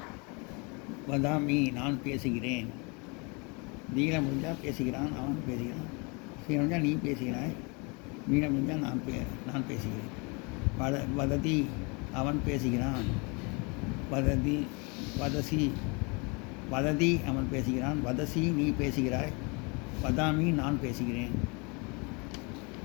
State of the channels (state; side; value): quieter; right; 30.5 dB